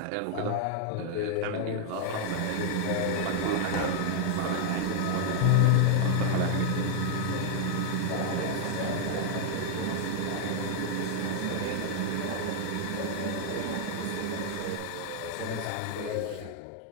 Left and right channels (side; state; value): both; different; correlation 0.00